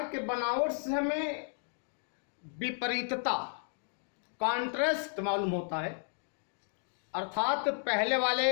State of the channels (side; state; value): right; silent; 55 dB below the other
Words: के बनावट से हमें विपरीतता, कॉन्ट्रास्ट मालूम होता है। अर्थात पहले